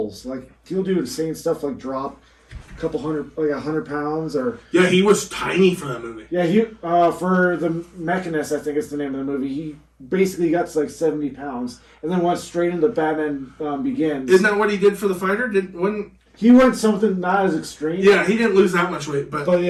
Like he'll do insane stuff like drop couple hundred, like 100 pounds, or Yeah, he was tiny for that movie. yeah, he for the Mechanist, I think is the name of the movie. He basically got to like 70 pounds, and then went straight into Batman Begins. Isn't that what he did for the fighter? He went something not as extreme. Yeah, he didn't lose that much weight, but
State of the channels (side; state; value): both; identical; correlation 1.00